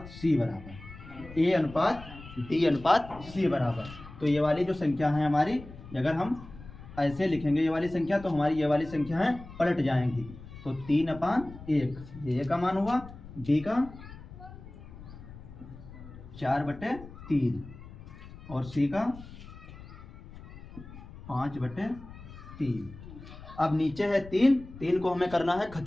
C बराबर A अनुपात B अनुपात C बराबर, तो ये वाली जो संख्या है हमारी, अगर हम ऐसे लिखेंगे ये वाली संख्या, तो हमारी ये वाली संख्या है पलट जाएंगी। तो 3/1 ये A का मान हुआ, B का 4/3 और C का 5/3। अब नीचे है 3 को हमें करना है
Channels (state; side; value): noise; left; rumble, 16 dB below the sound